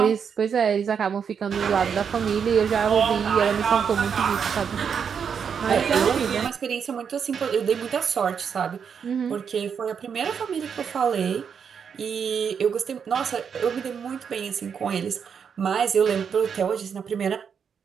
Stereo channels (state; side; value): quieter; left; 7.0 dB